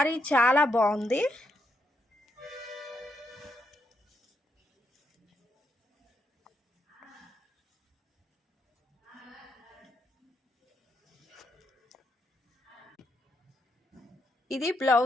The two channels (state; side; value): normal; both; correlation 0.79